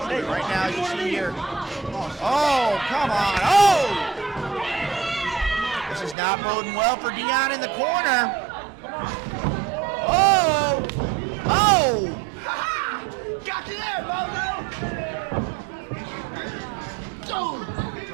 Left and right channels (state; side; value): drops out; left; at 6.2 s